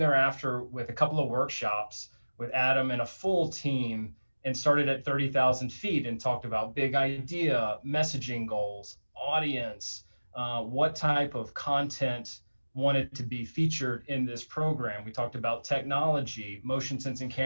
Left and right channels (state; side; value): inverted; both; correlation -1.00